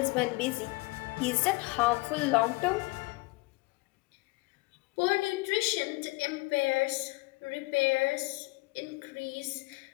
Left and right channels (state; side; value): quieter; right; 24.1 dB